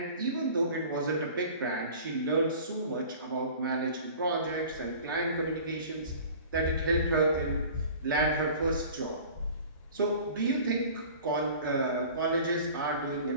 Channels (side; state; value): both; inverted; correlation -0.43